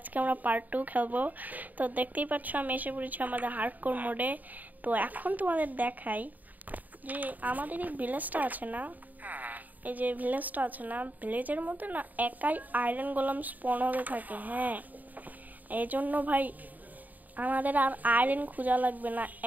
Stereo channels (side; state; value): left; late; 0.081 ms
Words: আমরা পার্ট 2 খেলবো। তো দেখতেই পাচ্ছ আমি এসে পড়েছি আমাদের হার্ডকোর মোডে। তো এখন তোমাদের দেখাই যে আমাদের এই ভিলেজটা আছে না, এই যে ভিলেজটা আছে না, ভিলেজের মধ্যে না একাই আয়রন গোলাম স্পন হতে থাকে। হ্যাঁ, এই জন্য ভাই আমাদের আর আয়রন খোঁজা লাগবে না,